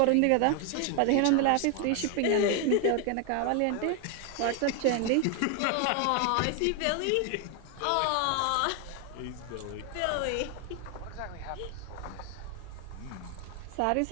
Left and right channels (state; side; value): different; both; correlation 0.01